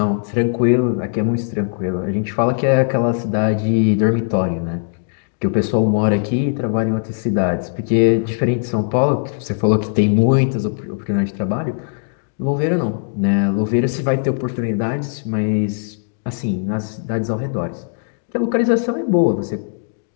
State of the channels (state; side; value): silent; right; digital silence